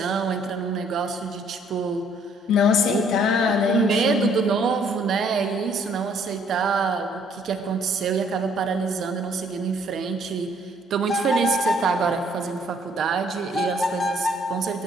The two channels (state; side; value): normal; both; correlation 0.63